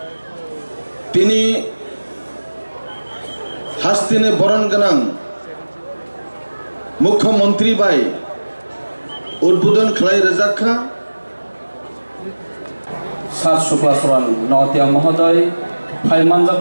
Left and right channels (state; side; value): inverted; both; correlation -1.00